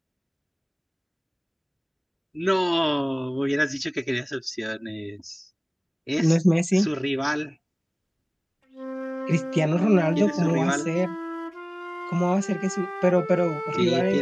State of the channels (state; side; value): identical; both; correlation 1.00